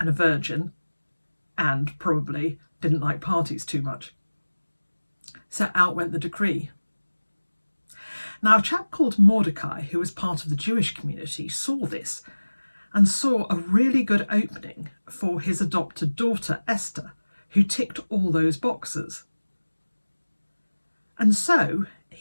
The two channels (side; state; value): both; inverted; correlation -1.00